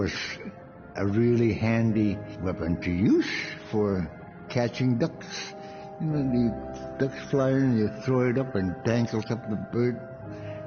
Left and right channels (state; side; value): identical; both; correlation 1.00